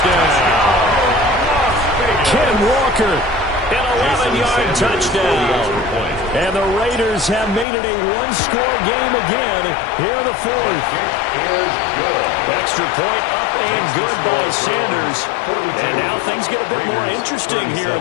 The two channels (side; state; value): right; drops out; at 7.7 s